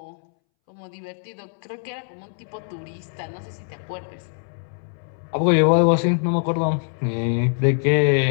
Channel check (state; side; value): silent; right; 63 dB below the other